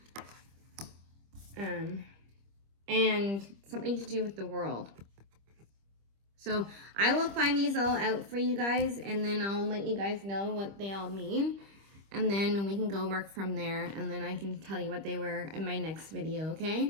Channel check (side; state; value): left; late; 25 ms